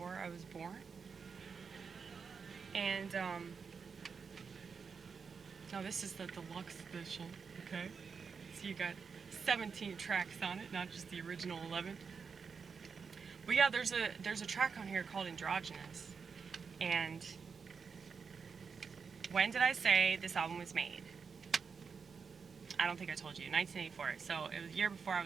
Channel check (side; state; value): left; quieter; 5.7 dB